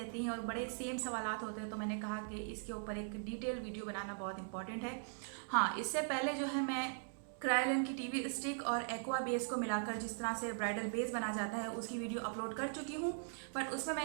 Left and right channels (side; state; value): left; silent; digital silence